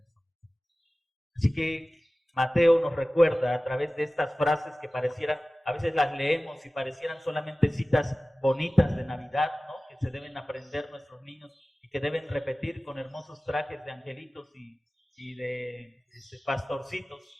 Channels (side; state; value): both; normal; correlation 0.97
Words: mensaje. Así que Mateo nos recuerda a través de estas frases que parecieran, a veces las leemos y parecieran solamente citas bonitas de Navidad, ¿no? Que se deben aprender nuestros niños y que deben repetir con hermosos trajes de angelitos y de pastorcitos.